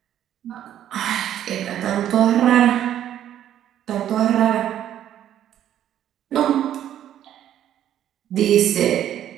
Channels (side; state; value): left; quieter; 11.1 dB